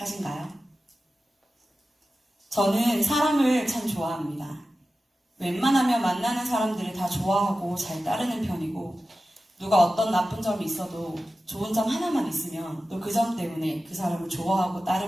저는 사람을 참 좋아합니다. 웬만하면 만나는 사람들을 다 좋아하고 잘 따르는 편이고, 누가 어떤 나쁜 점이 있어도 좋은 점 하나만 있으면 또 그 점 때문에 그 사람을 좋아하고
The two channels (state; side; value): normal; both; correlation 0.94